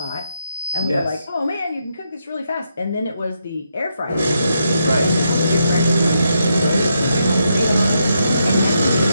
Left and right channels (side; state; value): both; inverted; correlation -0.80